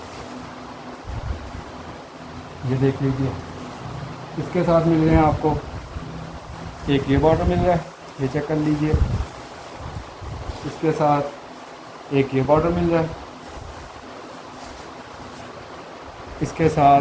ये देख लीजिए। इसके साथ मिल रहे हैं आपको एक ये बॉर्डर मिल रहा है, ये चेक कर लीजिए। इसके साथ एक ये बॉर्डर मिल रहा है। इसके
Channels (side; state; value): both; identical; correlation 1.00